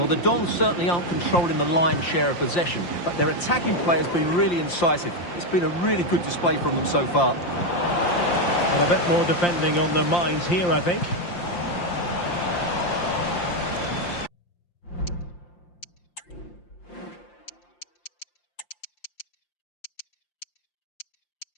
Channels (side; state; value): right; late; 5.7 ms